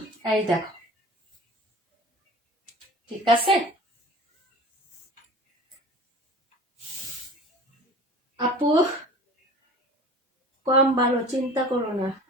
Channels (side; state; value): both; normal; correlation 0.41